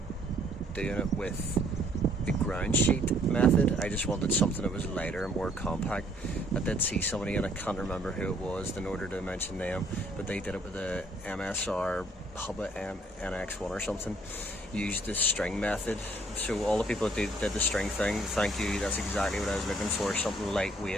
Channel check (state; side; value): normal; both; correlation 0.63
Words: doing it with the ground sheet method. I just wanted something that was lighter and more compact. I did see somebody, and I can't remember who it was in order to mention them, but they did it with a MSR Hubba NX1 or something, used the string method. So all the people that did the string thing, thank you, that's exactly what I was looking for, something